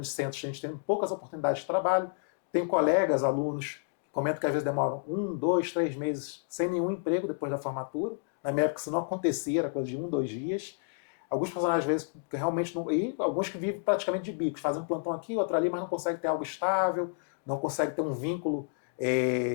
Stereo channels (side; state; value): right; silent; digital silence